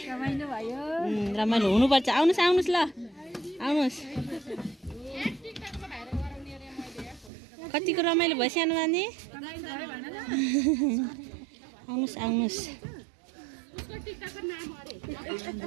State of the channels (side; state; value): left; drops out; at 7.3 s